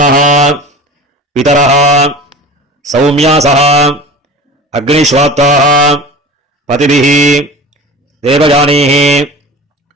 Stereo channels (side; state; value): both; normal; correlation 0.37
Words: பிதரஹ சௌமியாசஹ அக்னிஸ்வாத்தாஹ பதிபிஹி தேவஜானீஹி